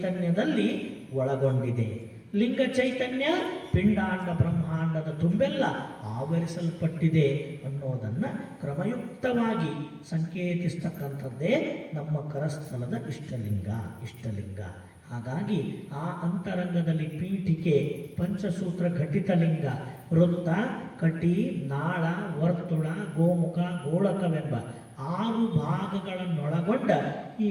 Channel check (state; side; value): identical; both; correlation 1.00